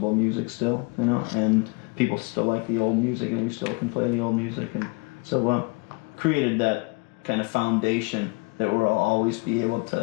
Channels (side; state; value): right; quieter; 29.4 dB